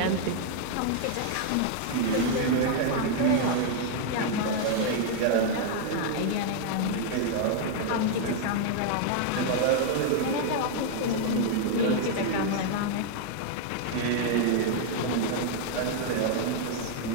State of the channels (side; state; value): both; different; correlation 0.00